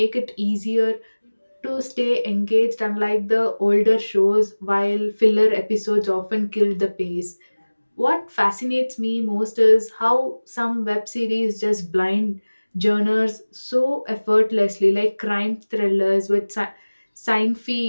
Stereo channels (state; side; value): inverted; both; correlation -1.00